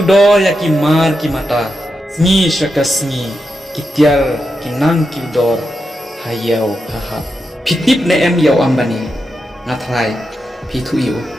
do ya ki mar ki mata ni shakasni kitiar kinang kiudor hayau haha pitip ne em yau ambani ngathrai pithu yu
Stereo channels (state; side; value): normal; both; correlation 0.87